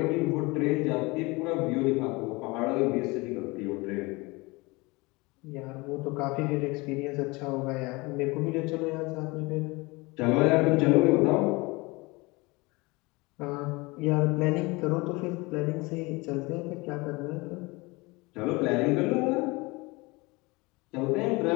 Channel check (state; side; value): quieter; right; 24.5 dB